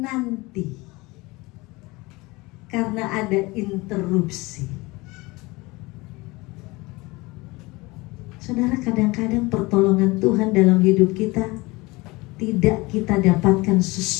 Karena ada interupsi. Saudara, kadang-kadang pertolongan Tuhan dalam hidup kita tidak kita dapatkan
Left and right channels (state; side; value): quieter; right; 23.0 dB